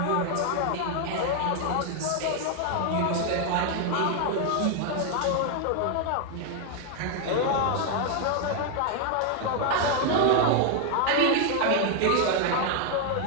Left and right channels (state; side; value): different; both; correlation 0.00